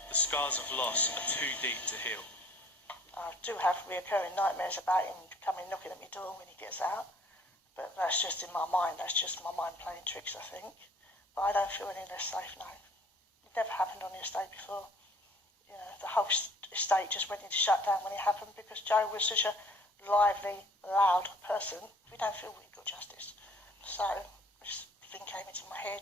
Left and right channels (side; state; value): both; normal; correlation 0.55